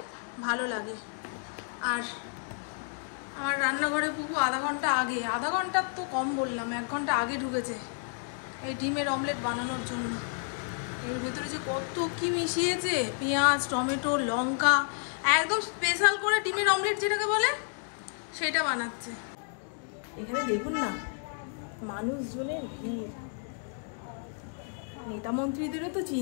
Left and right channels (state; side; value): silent; right; 57 dB below the other